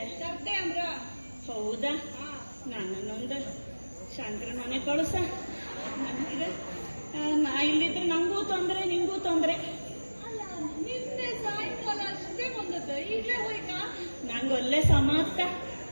ಅಂದ್ರ? ಹೌದಾ, ನನ್ನೊಂದು ಶಂಕರ ಮನೆ ಕಳುಸ. ನಾ ಇಲ್ಲಿದ್ರೆ ನಂಗೂ ತೊಂದ್ರೆ, ನಿಂಗೂ ತೊಂದ್ರೆ. ನಿನ್ನೆ ಸಾಯಂಕಾಲ ಅಷ್ಟೇ ಬಂದದ್ದು, ಈಗಲೇ ಹೋಯ್ತಾ? ನಂಗೊಲ್ಲೆ ಸಮಾಪ್ತ,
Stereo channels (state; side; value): inverted; both; correlation -1.00